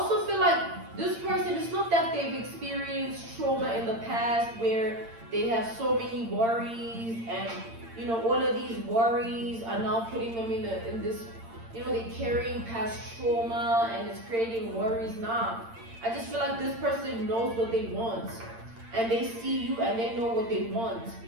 feel like this person, it's not that they've experienced trauma in the past where they have so many worries and all of these worries are now putting them in this, they're carrying past trauma and it's creating worries. Nah, I just feel like this person knows what they want and they see you and they know what they want.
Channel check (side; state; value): left; late; 8.8 ms